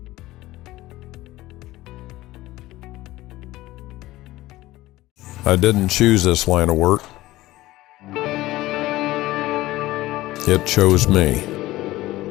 I didn't choose this line of work. It chose me.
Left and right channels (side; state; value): right; quieter; 17.4 dB